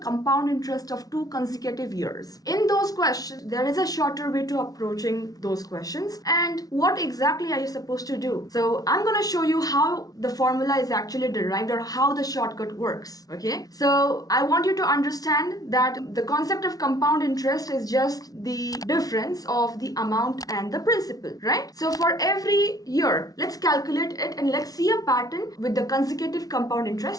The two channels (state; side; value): late; right; 0.18 ms